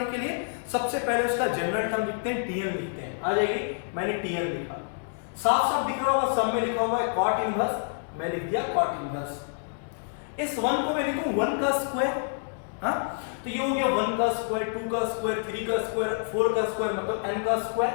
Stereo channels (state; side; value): silent; right; digital silence